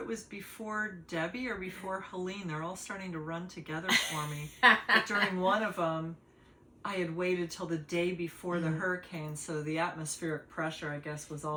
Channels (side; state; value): both; identical; correlation 1.00